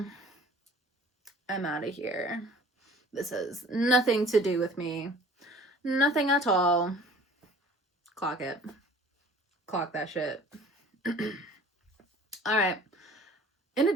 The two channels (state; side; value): normal; both; correlation 0.48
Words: out of here. This has nothing to do with me. Nothing at all. Clock it. Clock that shit. All right. In